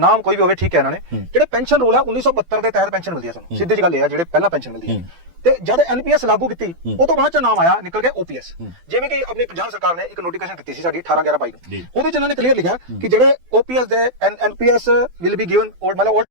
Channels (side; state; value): left; late; 12 ms